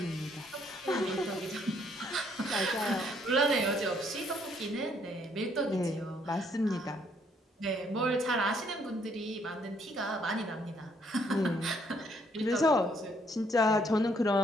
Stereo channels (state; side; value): normal; both; correlation 0.68